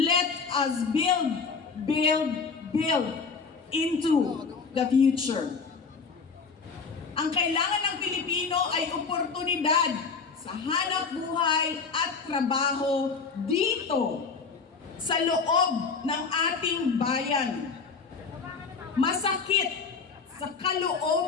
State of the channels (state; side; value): quieter; right; 5.1 dB